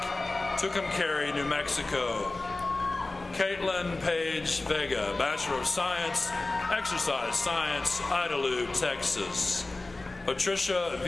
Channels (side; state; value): right; quieter; 3.1 dB